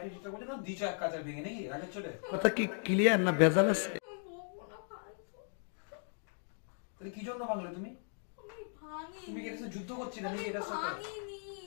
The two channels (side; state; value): right; silent; 53 dB below the other